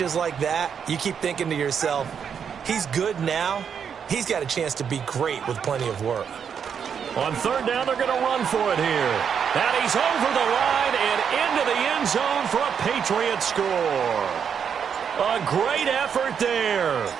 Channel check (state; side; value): quieter; left; 7.3 dB